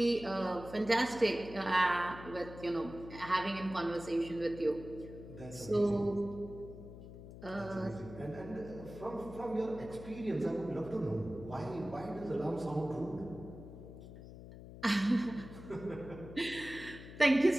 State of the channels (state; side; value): noise; left; hum, 14 dB below the sound